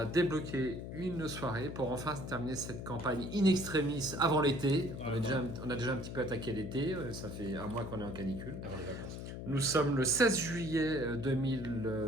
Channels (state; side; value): noise; left; hum, 8 dB below the sound